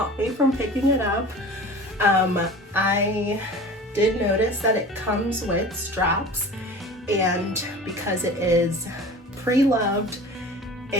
me from picking it up. I did notice that it comes with straps, and because it is pre-loved,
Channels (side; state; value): both; normal; correlation 0.39